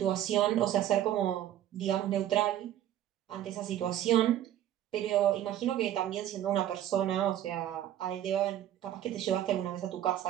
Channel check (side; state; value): left; quieter; 11.9 dB